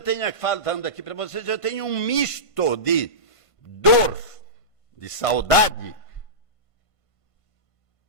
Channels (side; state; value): right; late; 1.5 ms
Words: falando aqui para vocês, eu tenho um misto de dor, de saudade,